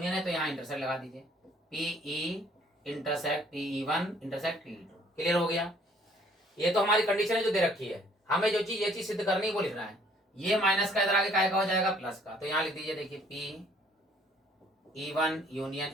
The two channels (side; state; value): both; normal; correlation 0.60